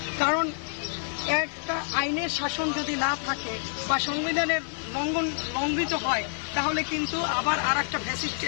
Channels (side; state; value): right; silent; 58 dB below the other